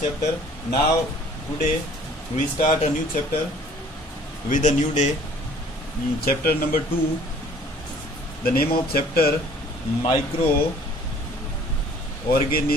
chapter. Now today we start a new chapter with a new day. Chapter number 2, the name of chapter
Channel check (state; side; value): normal; both; correlation 0.54